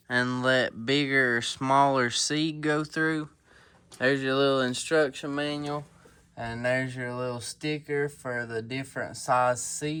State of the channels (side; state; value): both; identical; correlation 1.00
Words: and let bigger or smaller seed go through. There's your little instruction manual, and there's your little sticker for the different size